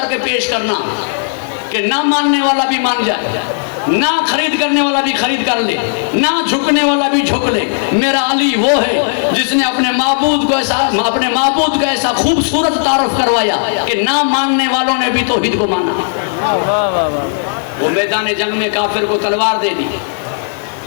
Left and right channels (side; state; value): right; silent; digital silence